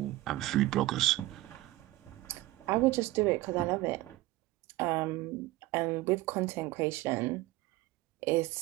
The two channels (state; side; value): quieter; left; 17.9 dB